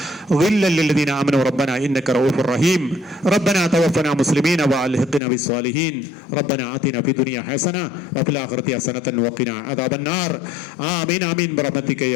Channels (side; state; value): right; drops out; at 5.2 s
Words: غلا للذين آمنوا ربنا إنك رؤوف رحيم. ربنا توفنا مسلمين وألحقنا بالصالحين. ربنا آتنا في الدنيا حسنة وفي الآخرة حسنة وقنا عذاب النار. آمين آمين برحمتك